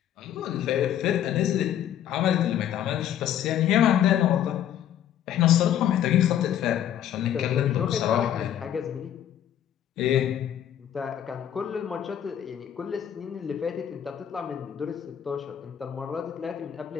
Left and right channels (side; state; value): right; quieter; 10.5 dB